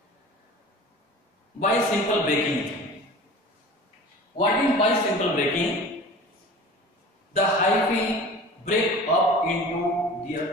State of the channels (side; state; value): both; normal; correlation 0.40